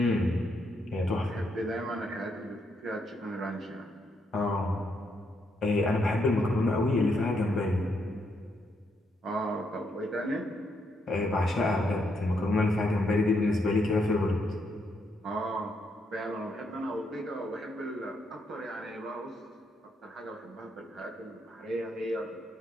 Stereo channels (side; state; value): both; normal; correlation 0.77